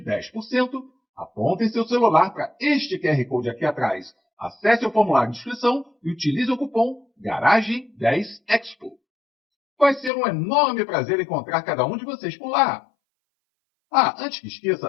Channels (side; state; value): right; drops out; at 10.1 s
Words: apontem seu celular para este QR Code aqui atrás, acesse o formulário de inscrição e utilize o cupom GARAGEM10EXPO. Vai ser um enorme prazer encontrar cada um de vocês por lá. Antes que